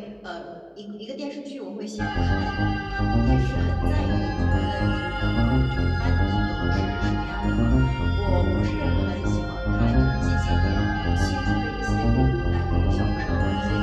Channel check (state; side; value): identical; both; correlation 1.00